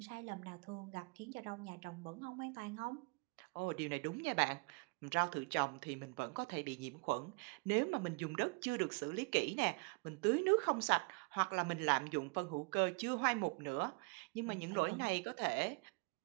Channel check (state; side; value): quieter; left; 30.6 dB